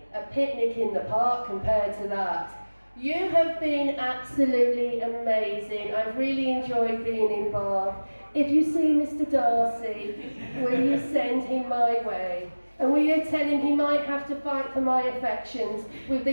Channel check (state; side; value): inverted; both; correlation -1.00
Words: a picnic in the park compared to that. You have been absolutely amazing. I've really enjoyed being in Bath. If you see Mr. Darcy, will you send him my way? And will you tell him he might have to fight for my affections with